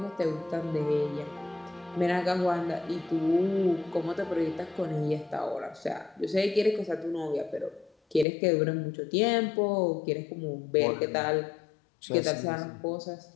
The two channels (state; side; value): drops out; right; at 8.2 s